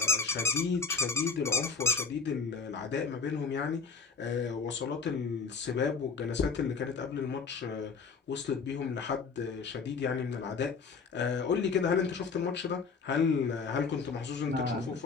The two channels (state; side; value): quieter; right; 5.1 dB